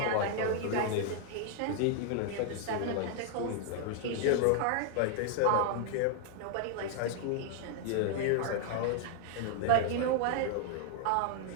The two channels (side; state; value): both; different; correlation -0.01